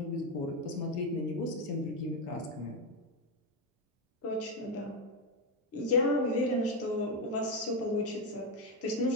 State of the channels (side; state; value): both; normal; correlation 0.09